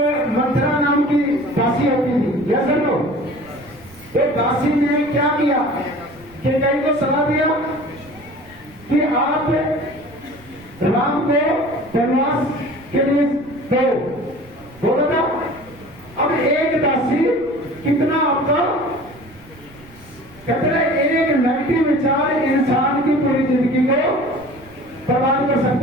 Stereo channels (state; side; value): noise; right; rumble, 24 dB below the sound